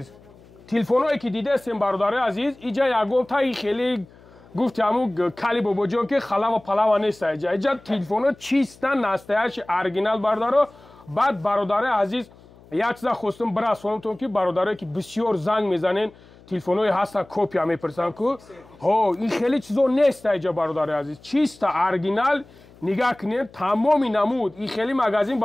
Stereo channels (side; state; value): left; noise; hum, 25 dB below the sound